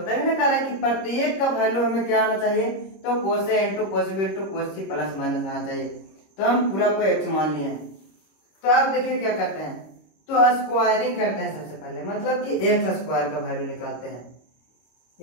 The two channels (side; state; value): right; late; 26 ms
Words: है। कह रहा है कि प्रत्येक का वैल्यू हमें क्या आना चाहिए, तो cos A into cos B into cos C plus minus आना चाहिए। तो हम पूरा को x मान लिए हैं। तो आप देखिए क्या करते हैं, तो स्क्वायरिंग करते हैं सबसे पहले, मतलब कि एक्स स्क्वायर का वैल्यू निकालते हैं।